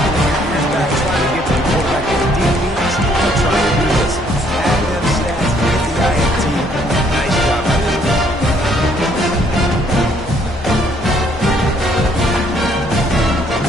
back trying to get to the quarterback with the DBs. They're trying to do this. Add them stats, get the INT. Nice job by them.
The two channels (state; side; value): normal; both; correlation 0.65